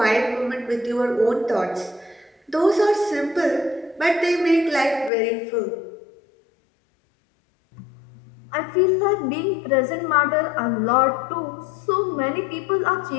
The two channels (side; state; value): right; drops out; at 5.1 s